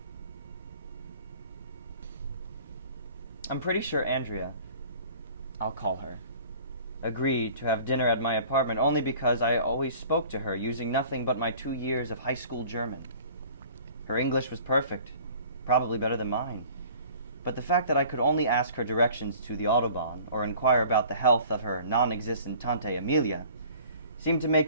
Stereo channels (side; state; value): both; inverted; correlation -0.48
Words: I'm pretty sure Andrea I'll call her, agreed to have dinner at my apartment only because I always spoke to her using nothing but my 2 years of high school German. Her English was perfect, probably better than mine. But the fact that I could only ask her directions to the Autobahn or inquire about the health of her non-existent Tante Amelia seemed to